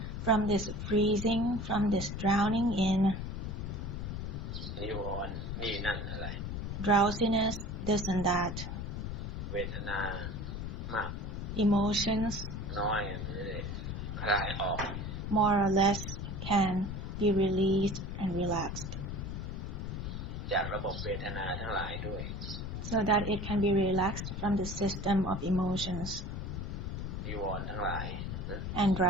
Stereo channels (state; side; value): noise; left; rumble, 5 dB below the sound